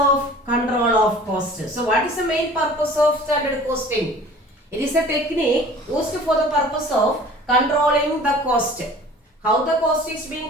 control of cost. So what is the main purpose of standard costing? It is a technique used for the purpose of controlling the cost. How the cost is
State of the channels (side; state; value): both; normal; correlation 0.46